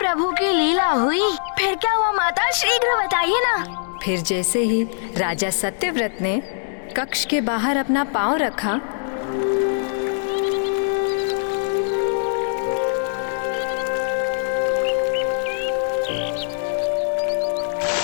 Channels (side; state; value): right; silent; digital silence